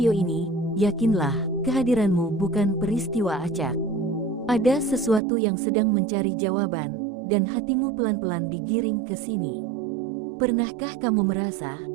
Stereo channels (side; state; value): left; drops out; at 5.2 s